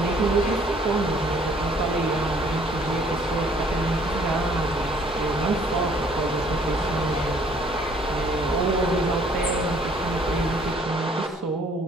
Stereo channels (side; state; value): both; normal; correlation 0.60